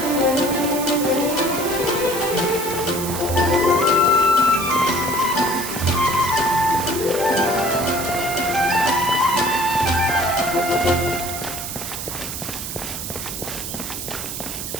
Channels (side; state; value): right; noise; hiss, 6 dB below the sound